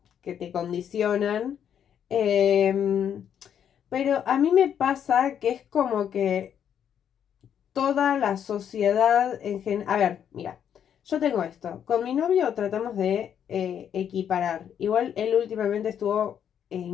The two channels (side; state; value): right; quieter; 8.9 dB